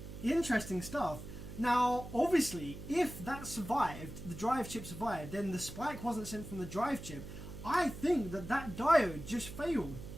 interesting stuff. Now, obviously, if that survived, the drive chip survived, then the spike wasn't sent from the drive chip. I think that diode just failed.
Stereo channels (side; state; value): right; noise; hum, 11 dB below the sound